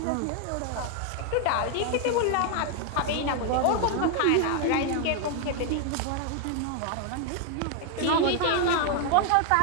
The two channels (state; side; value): different; both; correlation 0.00